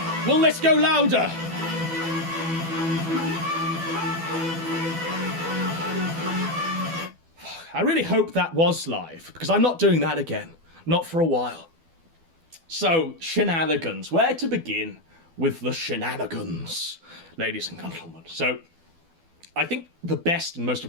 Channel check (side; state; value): left; late; 12 ms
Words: Will this go louder? I really hope that was live, because I'm not doing that again. Not for a while. So, shenanigans. Where to begin with the shenanigans, ladies and gentlemen? So, I think the best and most